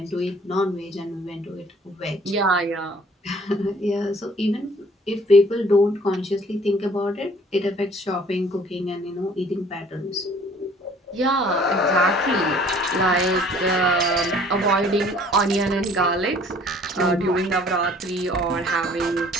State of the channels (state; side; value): normal; both; correlation 0.55